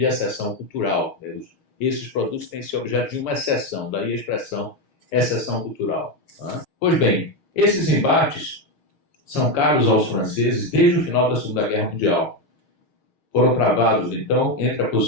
exceção cultural. Né? Esses produtos têm que ser objeto de uma exceção, daí a expressão exceção cultural. Né? Pois bem, esses embates são caros aos franceses desde o final da Segunda Guerra Mundial. Foram travados, então, entre a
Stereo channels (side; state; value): right; late; 6.4 ms